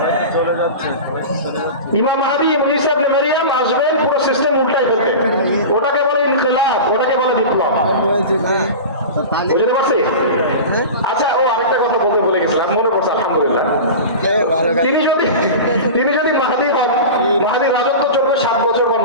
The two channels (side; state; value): both; inverted; correlation -0.30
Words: ইমাম মাহদী ঈসা ইবনে মারইয়াম আসবেন পুরো সিস্টেম উল্টাই ফেলতে, ওটাকে বলে ইনকিলাব, ওটাকে বলে বিপ্লব। বুঝতে পারছি? আচ্ছা, ও আরেকটা কথা বলতে বলে গেছিলাম, মনে পড়ছে আলহামদুলিল্লাহ। তিনি যদি মাহদী হন, মাহদীর রাজত্ব চলবে 7 বছর বা